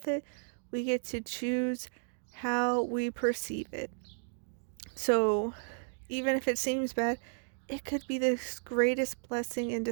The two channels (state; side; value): silent; left; digital silence